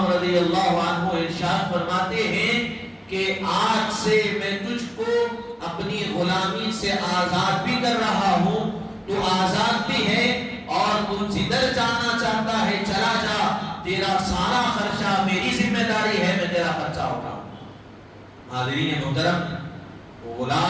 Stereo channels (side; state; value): both; identical; correlation 1.00